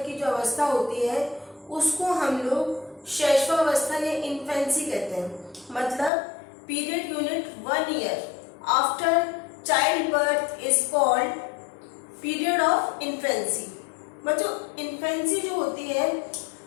की जो अवस्था होती है उसको हम लोग शैशवावस्था या इन्फेंसी कहते हैं। मतलब period unit 1 year after child birth is called period of infancy. बच्चों इन्फेंसी जो होती है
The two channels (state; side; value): drops out; right; at 6.1 s